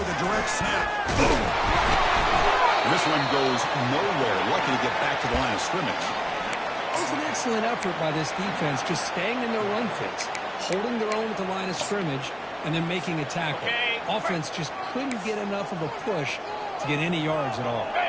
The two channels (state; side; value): identical; both; correlation 1.00